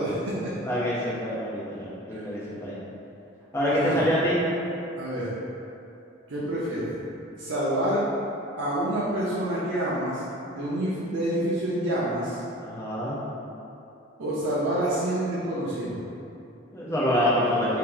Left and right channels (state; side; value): normal; both; correlation 0.39